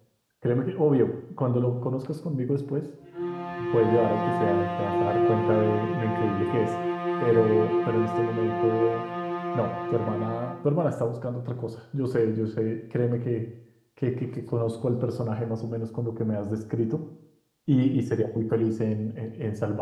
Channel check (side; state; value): both; identical; correlation 1.00